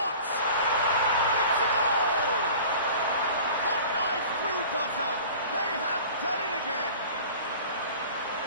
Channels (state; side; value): inverted; both; correlation -0.42